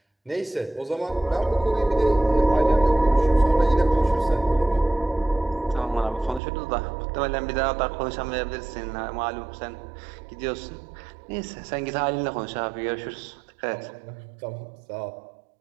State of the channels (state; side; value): drops out; left; at 6.4 s